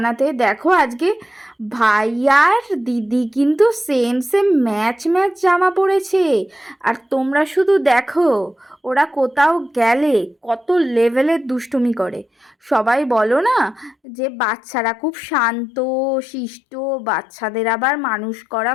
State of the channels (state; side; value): drops out; right; at 14.0 s